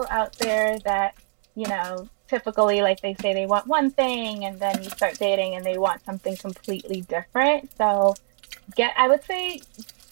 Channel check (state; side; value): silent; left; digital silence